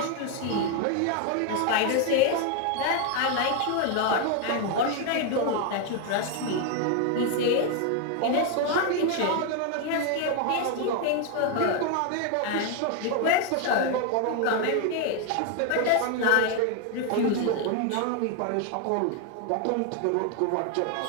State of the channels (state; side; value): different; both; correlation 0.01